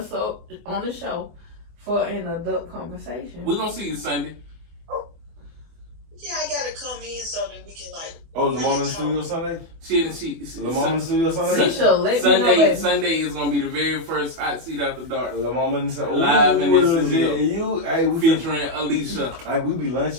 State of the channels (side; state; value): left; late; 24 ms